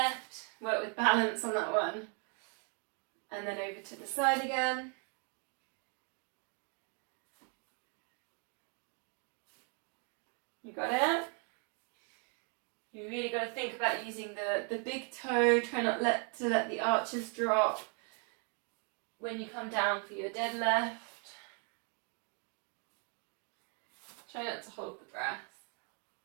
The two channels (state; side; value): quieter; left; 38.5 dB